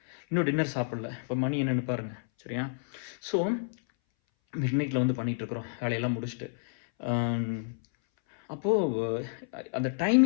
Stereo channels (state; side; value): silent; right; 58 dB below the other